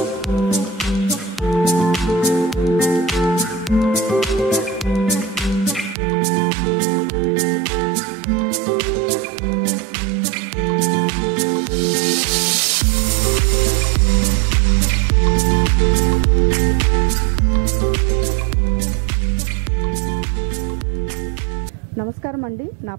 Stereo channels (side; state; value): left; drops out; at 6.0 s